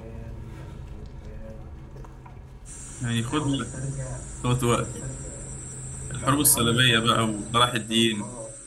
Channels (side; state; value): both; identical; correlation 1.00